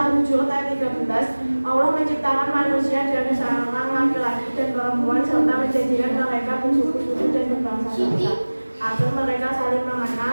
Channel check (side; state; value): both; inverted; correlation -1.00